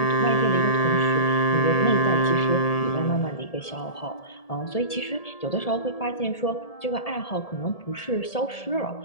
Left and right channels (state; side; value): late; right; 1.8 ms